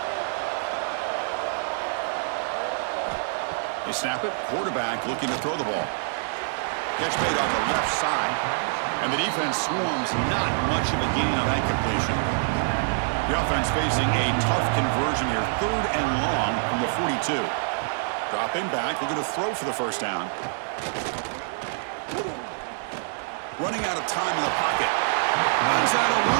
They snap it. Quarterback looking to throw the ball. Catch made on the left side. And the defense swarms. Not much of a gain on that completion. The offense facing a tough conversion here. 3rd and long from the 42. Dropping back. Looking to throw for the 1st down. Running out of time in the pocket. Runs out of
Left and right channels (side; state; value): left; silent; digital silence